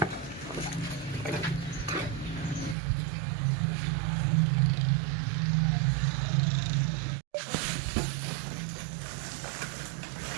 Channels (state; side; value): drops out; left; at 2.8 s